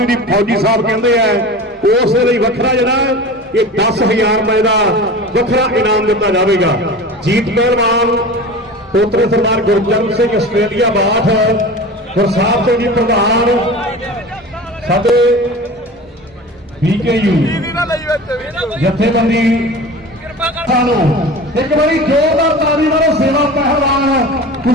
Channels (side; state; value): both; normal; correlation 0.35